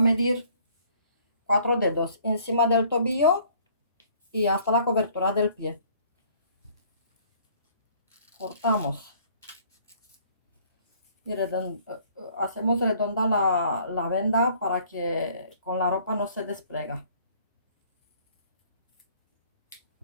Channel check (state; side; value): inverted; both; correlation -0.57